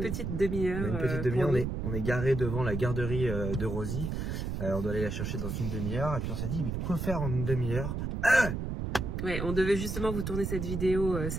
petite demi-heure. On est garé devant la garderie de Rosie. On doit aller la chercher dans une demi-heure et puis on s'est dit mais quoi faire en une demi-heure? Ouais, on devait justement vous tourner cette vidéo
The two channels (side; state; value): right; noise; rumble, 3 dB below the sound